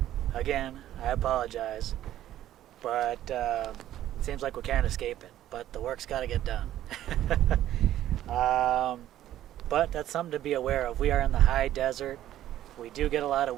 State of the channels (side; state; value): left; quieter; 12.7 dB